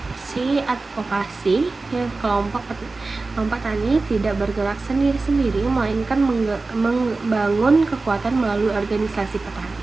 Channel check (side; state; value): left; quieter; 3.6 dB